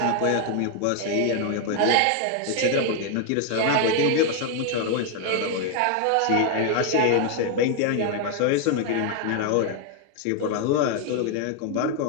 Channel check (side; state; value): both; different; correlation 0.00